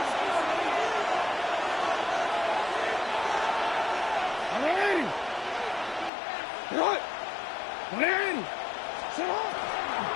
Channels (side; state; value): right; drops out; at 6.1 s